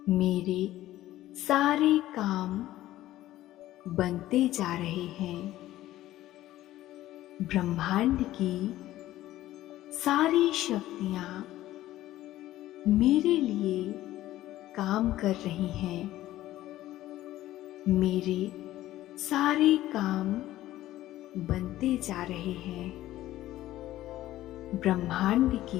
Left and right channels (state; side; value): quieter; right; 14.8 dB